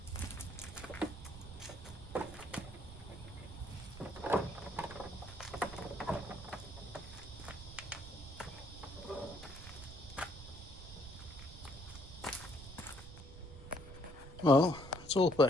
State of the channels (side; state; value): right; noise; rumble, 13 dB below the sound